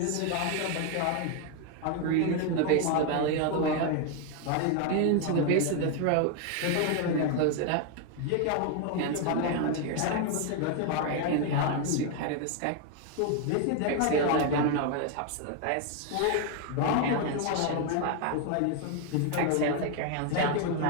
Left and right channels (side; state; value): both; different; correlation 0.01